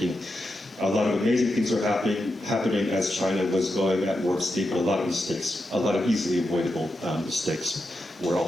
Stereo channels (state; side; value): normal; both; correlation 0.87